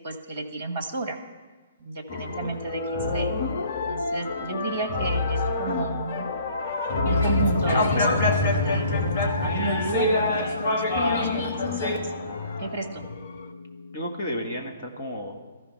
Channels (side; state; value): both; inverted; correlation -0.54